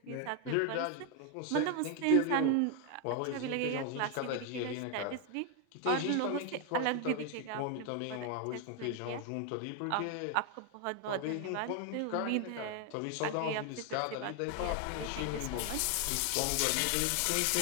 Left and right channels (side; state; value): both; different; correlation 0.01